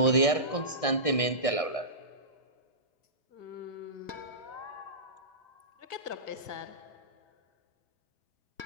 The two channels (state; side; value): late; right; 1.6 ms